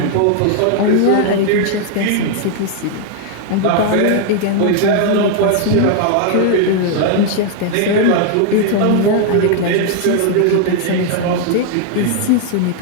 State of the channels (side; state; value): both; different; correlation 0.00